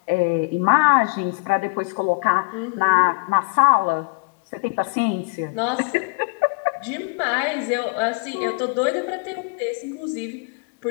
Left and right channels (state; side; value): quieter; right; 30.5 dB